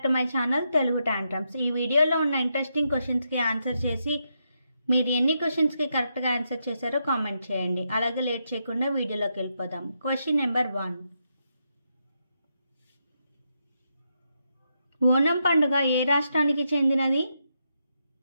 to my channel Telugu tantrums. ఈ వీడియోలో ఉన్న ఇంట్రెస్టింగ్ క్వశ్చన్స్కి ఆన్సర్ చేసి మీరు ఎన్ని క్వశ్చన్స్కి కరెక్ట్గా ఆన్సర్ చేశారో కామెంట్ చేయండి. అలాగే లేట్ చేయకుండా వీడియోలోకి వెళ్ళిపోదాం. Question number 1. ఓనం పండుగ ఏ రాష్ట్రానికి చెందినది?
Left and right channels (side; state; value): both; inverted; correlation -0.82